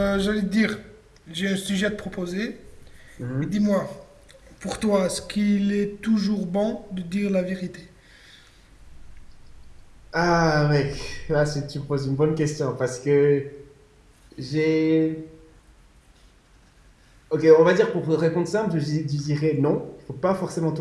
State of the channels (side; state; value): both; identical; correlation 1.00